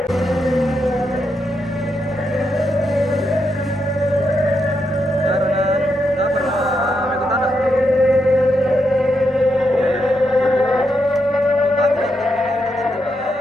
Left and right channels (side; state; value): both; normal; correlation 0.82